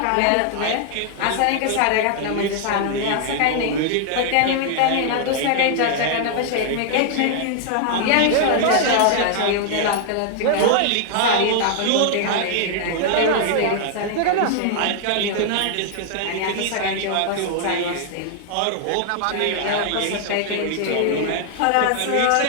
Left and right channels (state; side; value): different; both; correlation 0.00